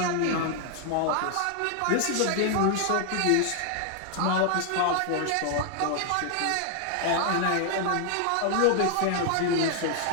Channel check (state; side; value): different; both; correlation 0.00